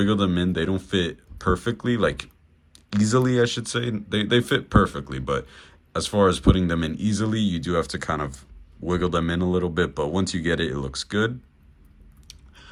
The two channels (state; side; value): identical; both; correlation 1.00